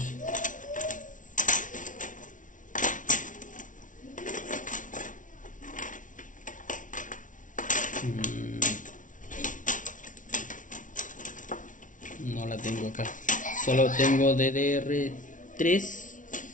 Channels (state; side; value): late; right; 0.38 ms